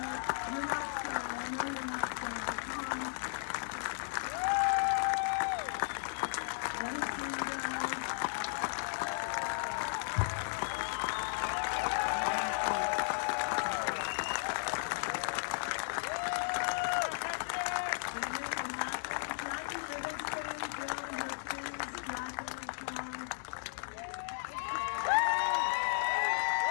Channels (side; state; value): right; silent; digital silence